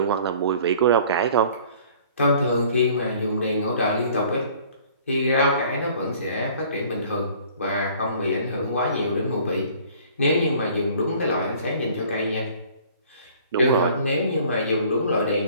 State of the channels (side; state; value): both; inverted; correlation -0.52